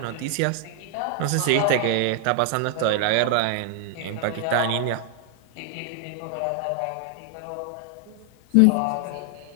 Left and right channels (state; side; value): different; both; correlation 0.00